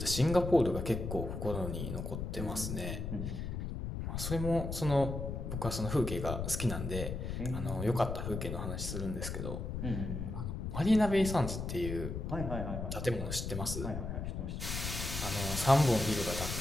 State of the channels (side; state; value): left; noise; rumble, 4 dB below the sound